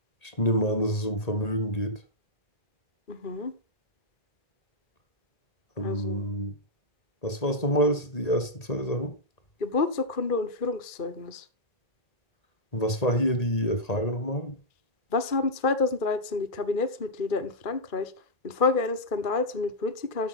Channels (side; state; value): right; late; 1.8 ms